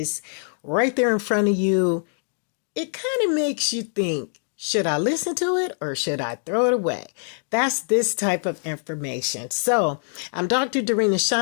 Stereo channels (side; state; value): right; silent; digital silence